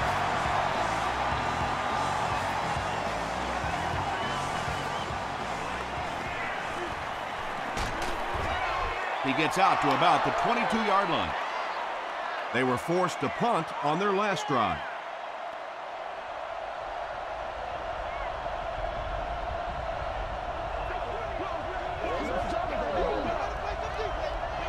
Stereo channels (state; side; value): identical; both; correlation 1.00